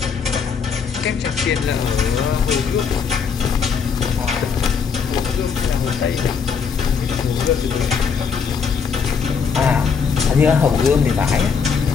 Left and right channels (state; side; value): quieter; right; 6.1 dB